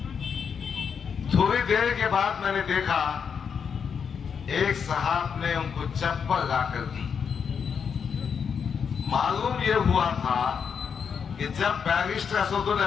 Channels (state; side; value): quieter; right; 6.7 dB